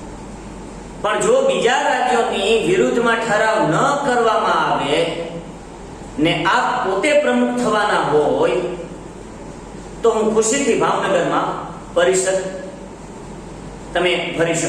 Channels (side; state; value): both; identical; correlation 1.00